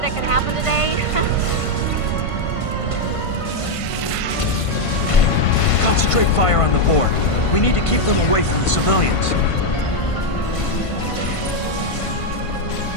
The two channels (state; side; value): late; right; 1.5 ms